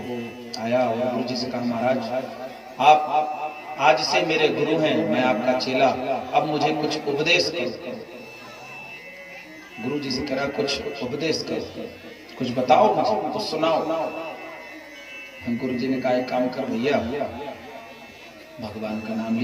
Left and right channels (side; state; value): both; identical; correlation 1.00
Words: आया और गुरु जी से कहा महाराज आप आज से मेरे गुरु हैं, मैं आपका चेला, अब मुझे कुछ उपदेश करो। गुरु जी से कहा कुछ उपदेश करो, कुछ बताओ मुझे, कुछ सुनाओ। गुरु जी ने कहा एक काम कर भैया, भगवान का नाम